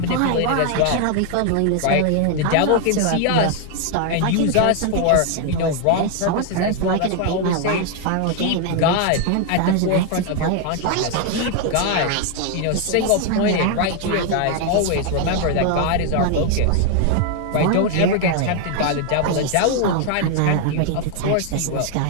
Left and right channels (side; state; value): both; different; correlation 0.00